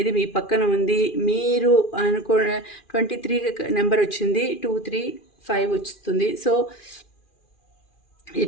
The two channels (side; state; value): right; late; 2.4 ms